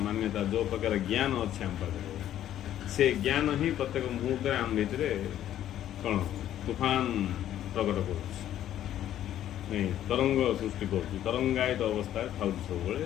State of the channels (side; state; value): right; quieter; 11.7 dB